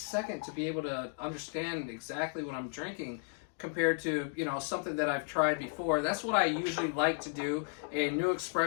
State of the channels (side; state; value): right; silent; 55 dB below the other